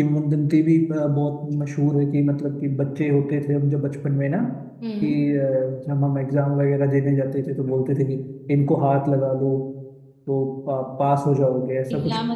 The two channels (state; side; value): identical; both; correlation 1.00